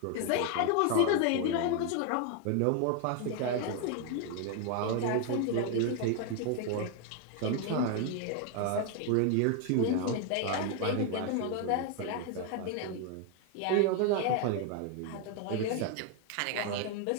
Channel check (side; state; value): both; different; correlation 0.01